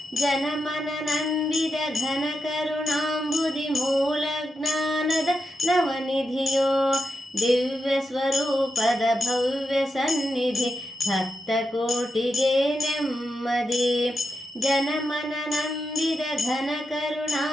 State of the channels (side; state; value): both; normal; correlation 0.86